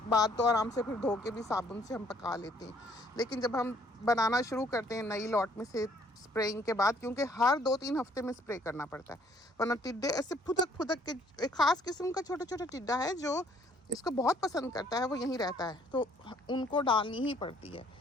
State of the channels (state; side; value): normal; both; correlation 0.62